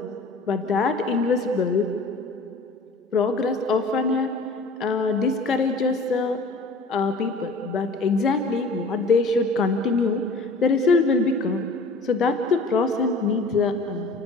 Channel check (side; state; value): right; quieter; 3.2 dB